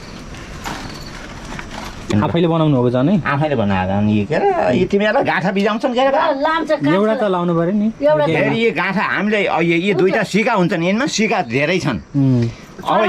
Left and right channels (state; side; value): identical; both; correlation 1.00